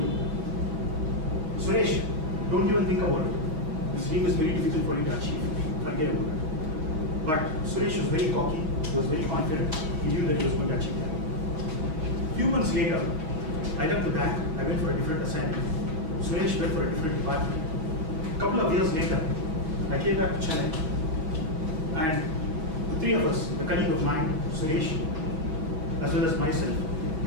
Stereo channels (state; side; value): late; left; 6.3 ms